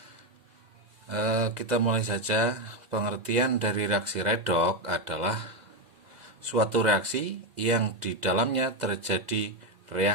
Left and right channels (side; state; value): left; late; 2.0 ms